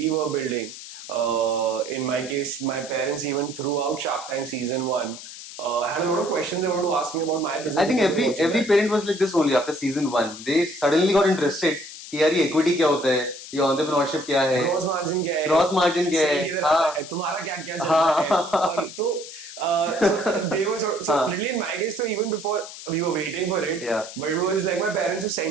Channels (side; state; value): left; noise; hiss, 13 dB below the sound